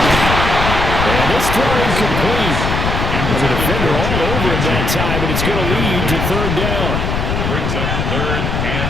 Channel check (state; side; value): noise; left; rumble, 1 dB below the sound